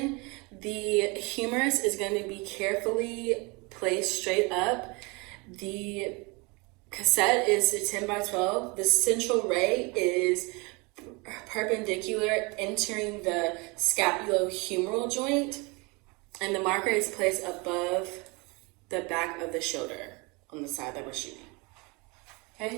The humerus is going to be carefully placed straight up. The cassette is a 10 by 12. The central ray is perpendicular entering the scapulohumeral joint, and the marker is placed above the back of the shoulder on the side that we're shooting.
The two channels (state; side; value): quieter; left; 27.8 dB